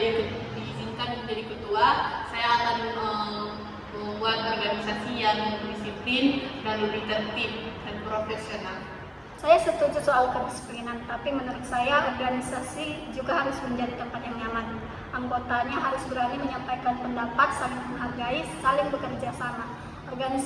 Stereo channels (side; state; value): both; identical; correlation 1.00